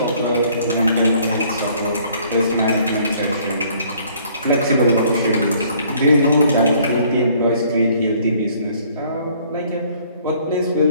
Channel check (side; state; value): both; inverted; correlation -0.60